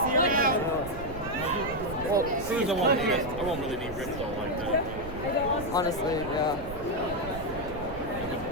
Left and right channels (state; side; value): noise; right; rumble, 11 dB below the sound